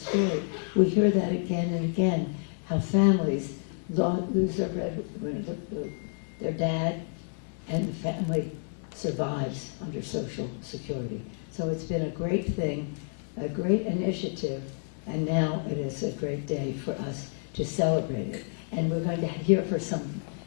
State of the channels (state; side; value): silent; right; 58 dB below the other